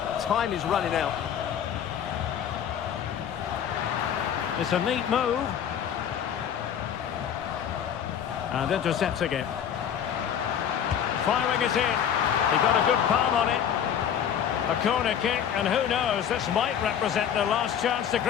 Time is running out. It's a neat move. And intercepting it. Firing it in. He got a good palm on it. A corner kick, and who knows, this might represent their last chance to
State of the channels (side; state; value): right; quieter; 8.8 dB